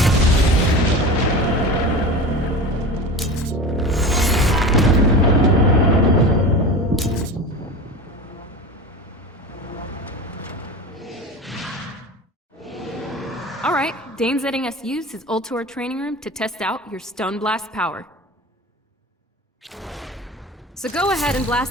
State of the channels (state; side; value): normal; both; correlation 0.30